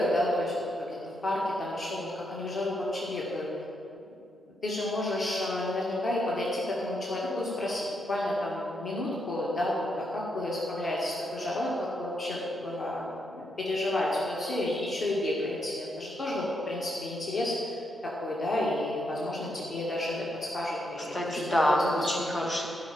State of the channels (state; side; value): normal; both; correlation 0.79